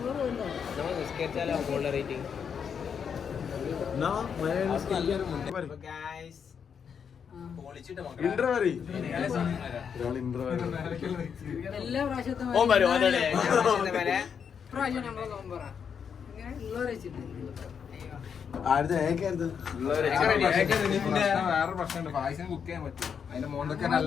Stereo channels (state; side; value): quieter; right; 7.1 dB